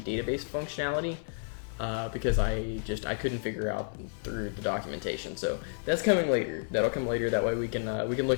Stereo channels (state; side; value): silent; right; 57 dB below the other